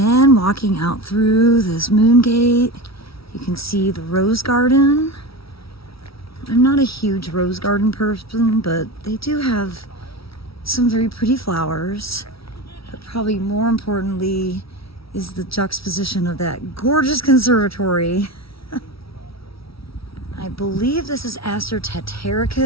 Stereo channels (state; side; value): late; right; 0.75 ms